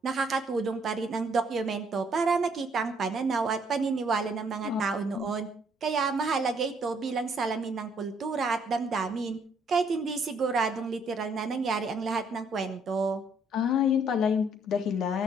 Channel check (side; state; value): both; normal; correlation 0.66